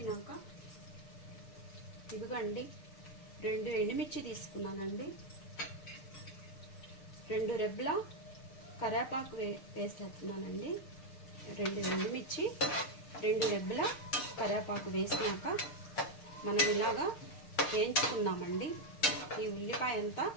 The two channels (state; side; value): late; right; 6.6 ms